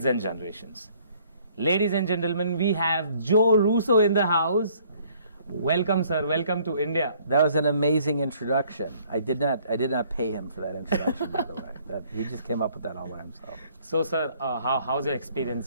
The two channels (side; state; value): both; inverted; correlation -0.61